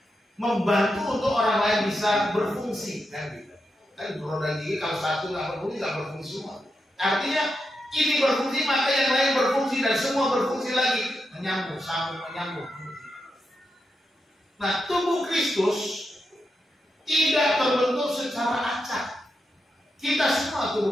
membantu untuk orang lain bisa berfungsi, kan gitu. Kan roda gigi kalau satu nggak berfungsi semua. Artinya ini berfungsi maka yang lain berfungsi dan semua berfungsi lagi, menyambung, sambung, menyambung. Nah, tubuh Kristus tidak terbentuk secara acak. Kita semua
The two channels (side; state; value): both; normal; correlation 0.86